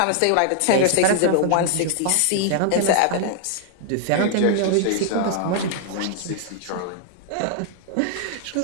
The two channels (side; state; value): both; different; correlation -0.01